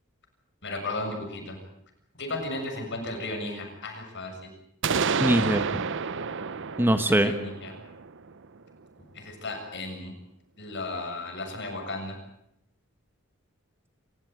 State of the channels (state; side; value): normal; both; correlation 0.40